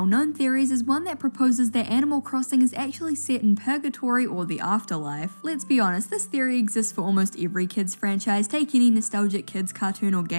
theories is one that proposes that Animal Crossing is actually set in purgatory or the afterlife. Let's be honest, this theory exists for almost every kids franchise. Take any nostalgic kids cartoon or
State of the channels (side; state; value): both; inverted; correlation -1.00